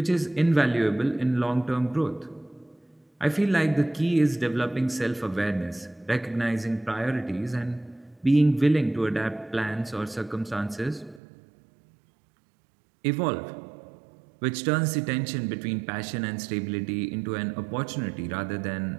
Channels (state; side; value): drops out; left; at 11.2 s